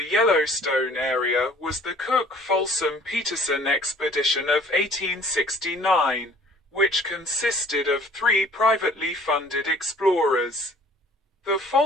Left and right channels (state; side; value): normal; both; correlation 0.53